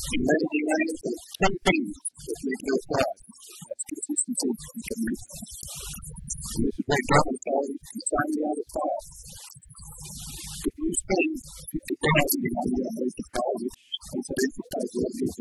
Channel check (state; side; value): identical; both; correlation 1.00